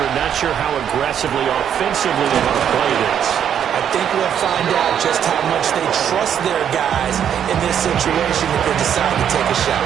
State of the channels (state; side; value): quieter; left; 9.0 dB